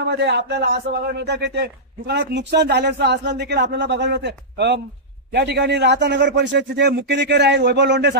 आपल्याला असं बघायला मिळतं की ते दुकानात नुकसान झाल्याचं असलं देखील आपल्याला बघायला मिळतं। या ठिकाणी राहता नगर परिषदेचे जे मुख्याधिकारी आहेत वैभव लोंढे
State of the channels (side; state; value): both; normal; correlation -0.14